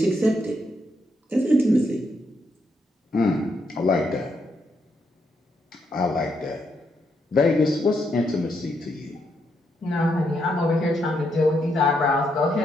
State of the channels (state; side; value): normal; both; correlation 0.78